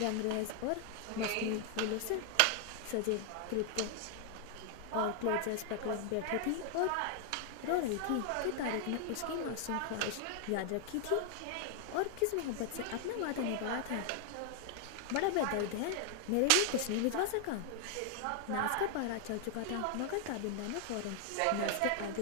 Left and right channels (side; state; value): both; different; correlation 0.00